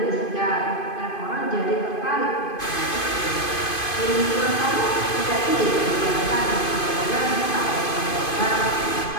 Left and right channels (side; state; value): right; late; 2.5 ms